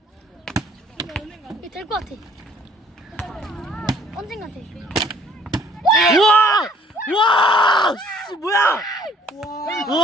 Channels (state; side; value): normal; both; correlation 0.58